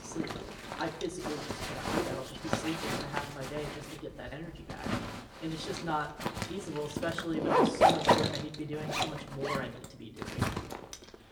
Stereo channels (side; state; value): both; identical; correlation 1.00